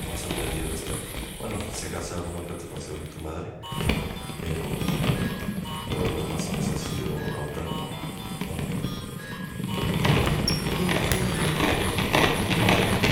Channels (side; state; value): both; identical; correlation 1.00